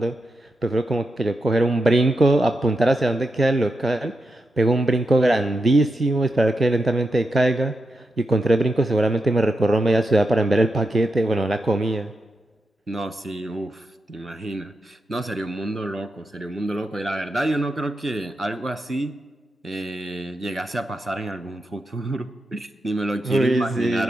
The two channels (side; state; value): both; normal; correlation 0.87